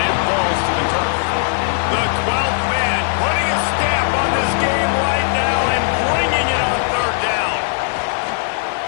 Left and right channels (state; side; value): silent; right; digital silence